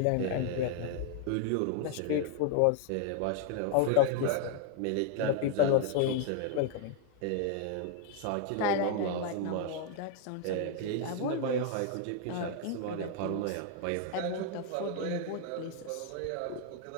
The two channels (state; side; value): different; both; correlation 0.00